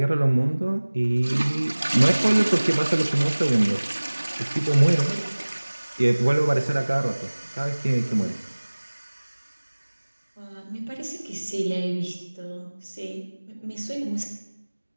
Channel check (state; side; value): inverted; both; correlation -1.00